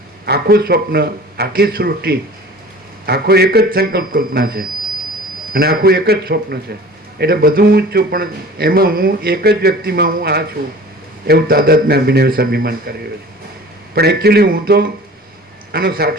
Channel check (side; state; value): both; normal; correlation 0.43